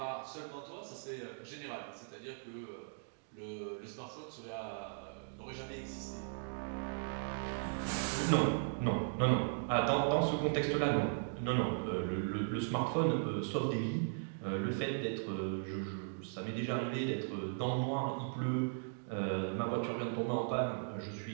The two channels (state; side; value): silent; left; digital silence